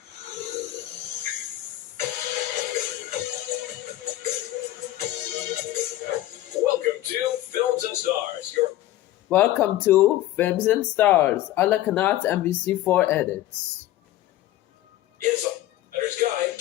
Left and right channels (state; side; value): quieter; right; 14.6 dB